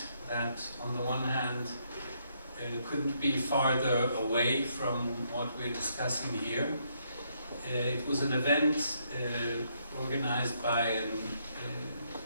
that on the one hand couldn't be farther away from what we're discussing here. It was an event organized by an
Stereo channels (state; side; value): inverted; both; correlation -0.74